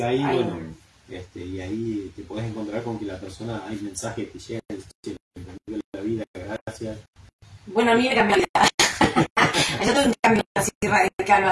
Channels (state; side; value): identical; both; correlation 1.00